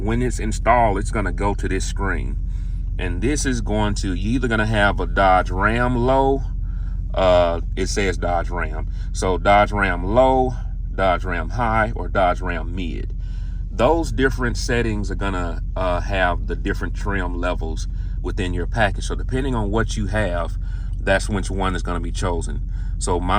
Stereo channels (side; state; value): both; identical; correlation 1.00